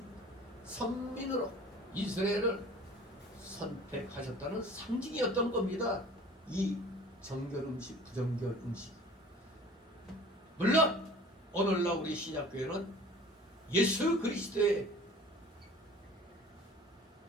선민으로 이스라엘을 선택하셨다는 상징이었던 겁니다. 이 정결 음식, 부정결 음식. 물론 오늘날 우리 신약교회는 예수 그리스도의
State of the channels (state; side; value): normal; both; correlation 0.46